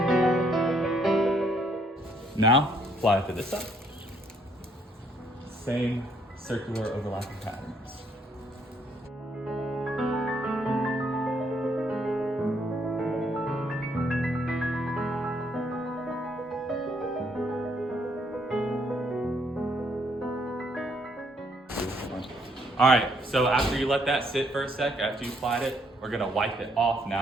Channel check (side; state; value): both; normal; correlation 0.69